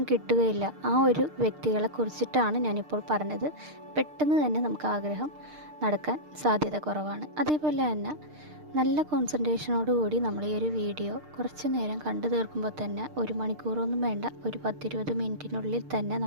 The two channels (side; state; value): left; late; 6.6 ms